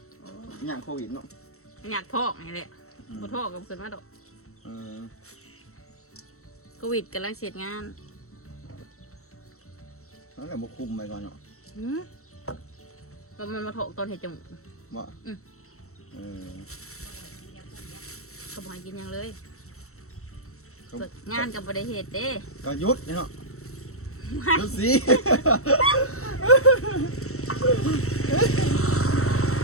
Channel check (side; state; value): right; late; 0.64 ms